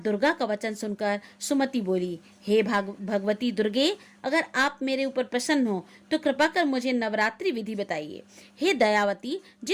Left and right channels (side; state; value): both; identical; correlation 1.00